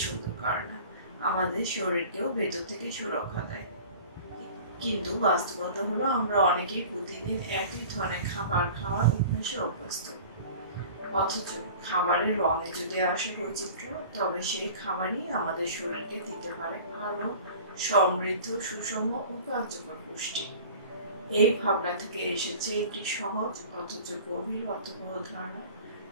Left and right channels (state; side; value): inverted; both; correlation -0.42